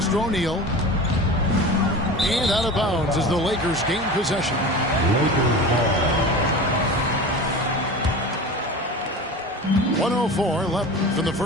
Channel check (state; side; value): normal; both; correlation 0.33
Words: to O'Neal. And out of bounds as the Lakers gain possession. 1:04 left in the